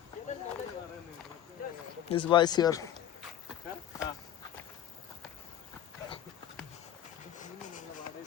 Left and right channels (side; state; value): right; quieter; 10.9 dB